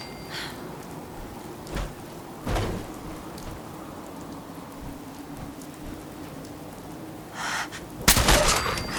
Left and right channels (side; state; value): both; identical; correlation 1.00